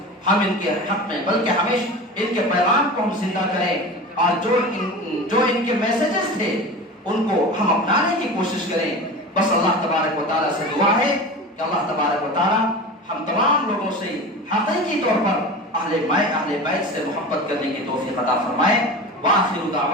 ہم ان کے حق میں، بلکہ ہمیشہ ان کے پیغام کو ہم زندہ کریں اور جو ان کے میسیجز تھے ان کو ہم اپنانے کی کوشش کریں۔ بس اللہ تبارک و تعالیٰ سے دعا ہے کہ اللہ تبارک و تعالیٰ ہم تمام لوگوں سے حقیقی طور پر اہل بیت سے محبت کرنے کی توفیق عطا فرمائے۔ وآخر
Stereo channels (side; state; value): both; normal; correlation 0.31